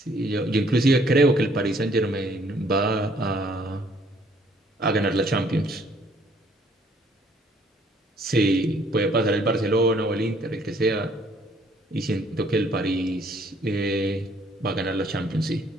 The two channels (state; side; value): normal; both; correlation 0.63